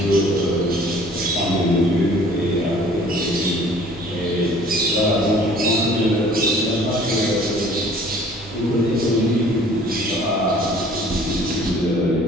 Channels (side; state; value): both; normal; correlation 0.52